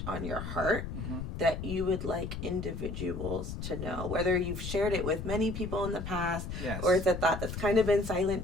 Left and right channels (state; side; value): noise; left; rumble, 6 dB below the sound